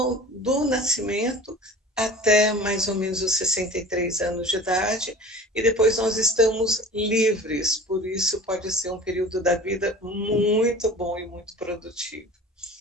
do nascimento até mais ou menos os 63 anos de idade, e depois nós estamos livres, por isso pode ser um período da vida muito bom e muito produtivo.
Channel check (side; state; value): both; normal; correlation 0.40